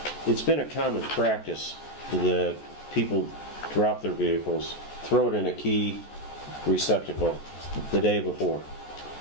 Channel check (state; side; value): late; right; 14 ms